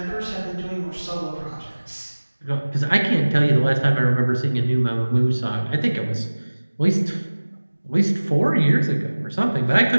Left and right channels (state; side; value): inverted; both; correlation -1.00